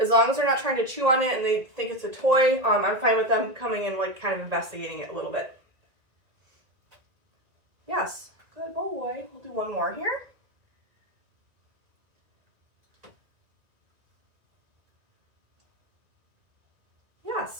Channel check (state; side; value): late; left; 1.9 ms